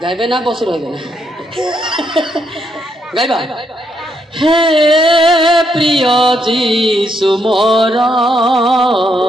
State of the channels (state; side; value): normal; both; correlation 0.77